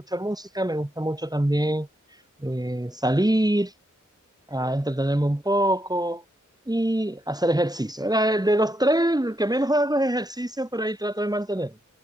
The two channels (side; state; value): both; normal; correlation 0.81